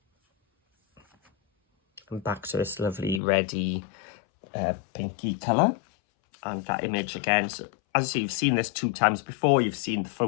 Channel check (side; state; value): right; drops out; at 3.2 s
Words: And back to this lovely reddy pinky colour. And that image again, so as you see, you've seen this 2 times before, you've seen the